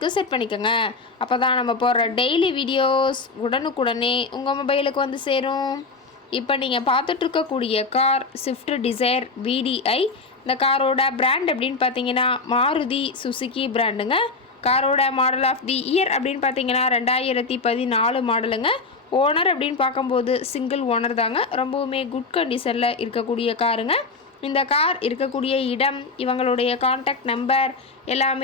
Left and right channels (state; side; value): quieter; right; 4.0 dB